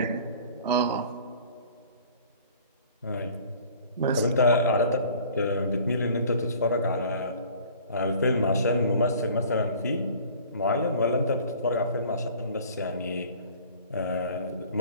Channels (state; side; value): inverted; both; correlation -0.49